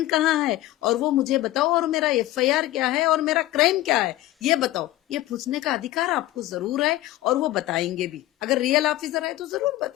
कहाँ है, और वो मुझे बताओ, और मेरा एफआईआर क्या है, और मेरा क्राइम क्या है, ये बताओ। ये पूछने का अधिकार आपको जरूर है, और वो बताएंगे भी। अगर रियल ऑफिसर है तो जरूर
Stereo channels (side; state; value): right; quieter; 16.0 dB